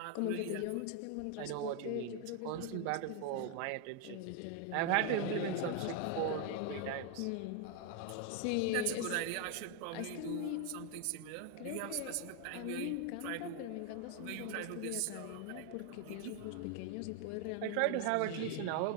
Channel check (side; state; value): both; different; correlation 0.01